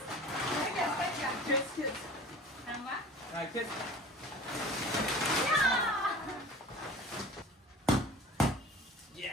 खेच खेच हा खेच.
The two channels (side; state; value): both; normal; correlation 0.41